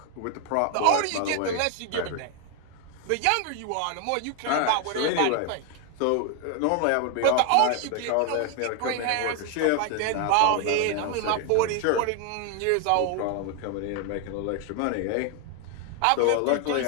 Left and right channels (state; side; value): different; both; correlation 0.01